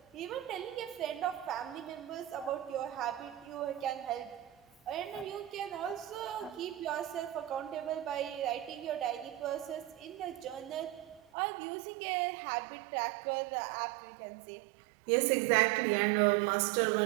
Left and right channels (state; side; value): drops out; left; at 11.2 s